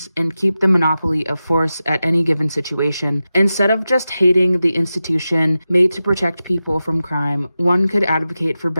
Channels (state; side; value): inverted; both; correlation -0.93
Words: and keep the monopoly of force at any given situation. Instead of just hating the institution made to protect people from crime, one could advocate for